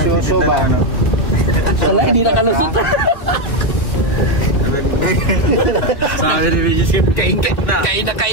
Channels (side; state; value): right; late; 2.6 ms